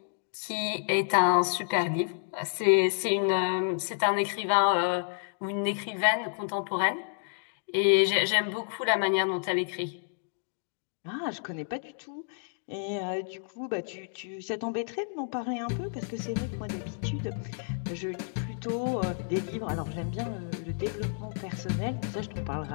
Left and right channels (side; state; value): right; silent; digital silence